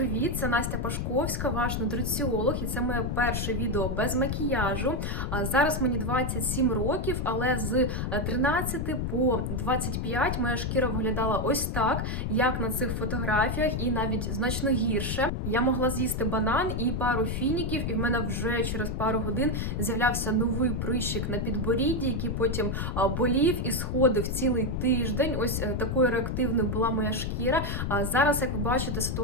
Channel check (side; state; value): left; noise; rumble, 1 dB below the sound